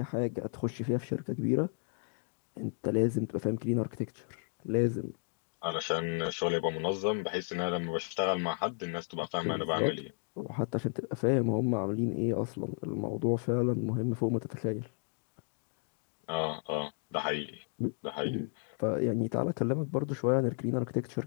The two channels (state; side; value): silent; right; 56 dB below the other